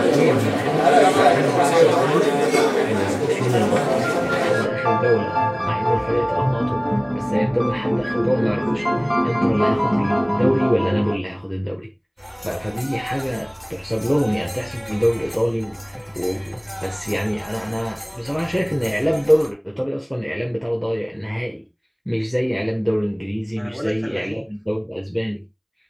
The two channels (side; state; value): both; identical; correlation 1.00